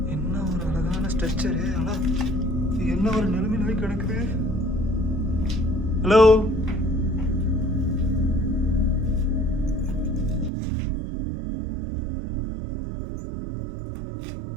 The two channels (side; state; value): left; drops out; at 10.5 s